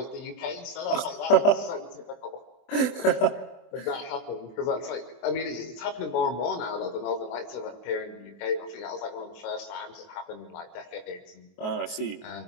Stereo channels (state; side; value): late; right; 23 ms